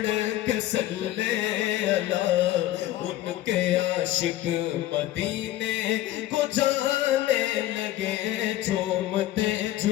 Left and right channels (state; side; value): quieter; right; 14.4 dB